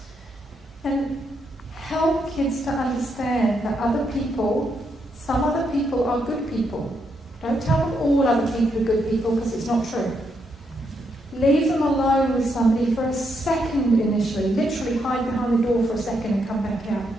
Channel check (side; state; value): both; normal; correlation 0.78